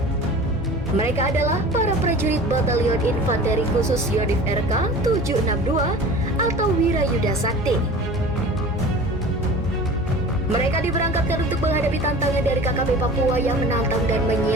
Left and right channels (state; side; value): normal; both; correlation 0.39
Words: Mereka adalah para prajurit Batalion Infanteri Khusus Yonif RK 762 atau Wirayuda Sakti. Mereka diberangkatkan untuk menghadapi tantangan dari KKB Papua yang menantang dan